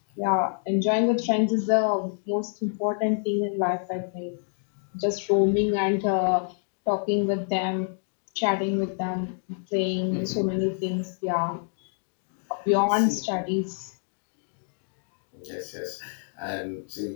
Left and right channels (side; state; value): right; silent; 60 dB below the other